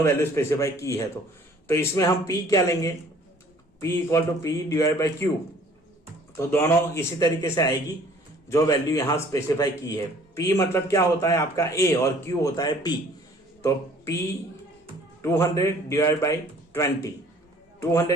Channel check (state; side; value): normal; both; correlation 0.54